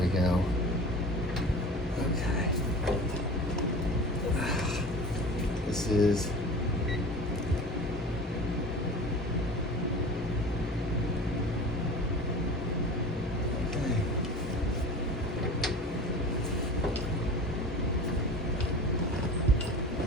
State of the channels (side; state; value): both; normal; correlation 0.37